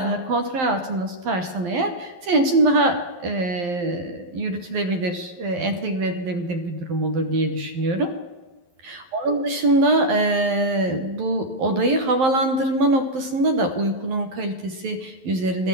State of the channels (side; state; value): left; late; 11 ms